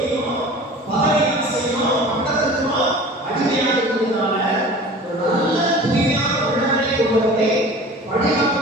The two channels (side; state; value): both; normal; correlation 0.41